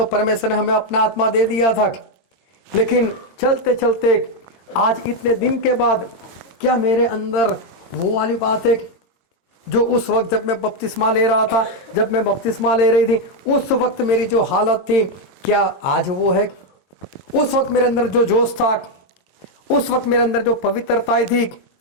परमेश्वर ने हमें अपना आत्मा दे दिया था। लेकिन चलते चलते आज इतने दिन के बाद क्या मेरे अंदर वो वाली बात है जो उस वक्त जब मैं बपतिस्मा ले रहा था, जब मैं बपतिस्मा ले रही थी, उस वक्त मेरी जो हालत थी, क्या आज वो है? उस वक्त मेरे अंदर जो जोश था, उस वक्त मेरे अंदर जो पवित्रता थी,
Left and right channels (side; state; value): right; late; 22 ms